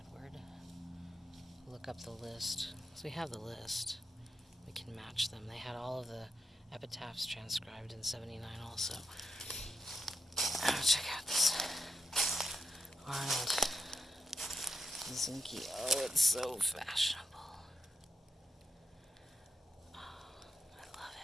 Look up the list. So we have the list. We can match them. They had all of the epitaphs transcribed in 79 also. Check out this Arnold Zinke. Oh, it's so fashionable. Oh, I love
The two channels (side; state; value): both; normal; correlation 0.84